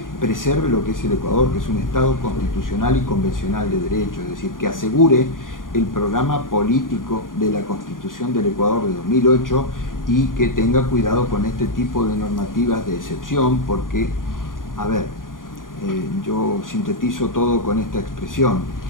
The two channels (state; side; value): late; right; 0.90 ms